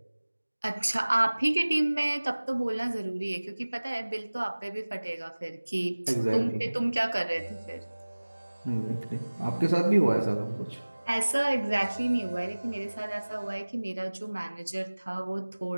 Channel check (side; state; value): both; inverted; correlation -1.00